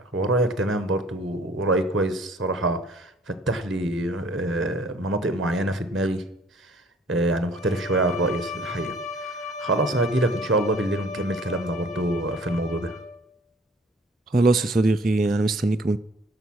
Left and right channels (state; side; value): normal; both; correlation 0.55